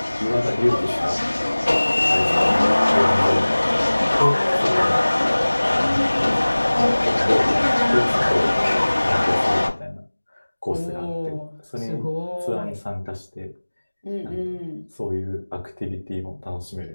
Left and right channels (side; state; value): both; inverted; correlation -1.00